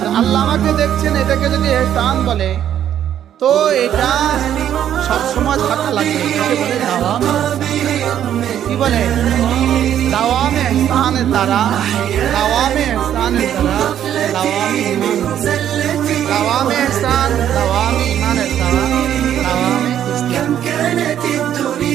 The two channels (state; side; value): quieter; left; 10.4 dB